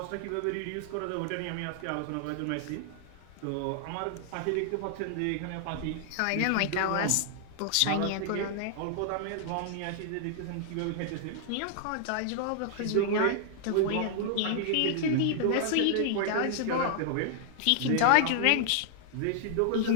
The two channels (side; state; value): both; different; correlation -0.01